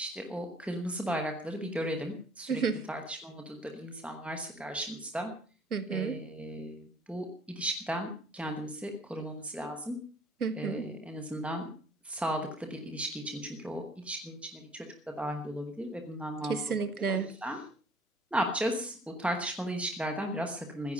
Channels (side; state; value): both; normal; correlation 0.55